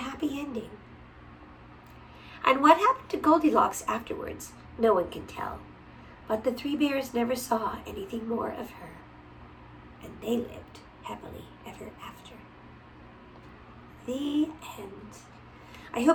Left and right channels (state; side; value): identical; both; correlation 1.00